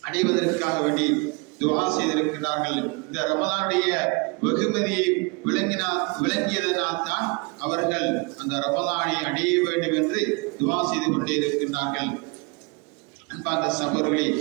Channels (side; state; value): left; quieter; 29.5 dB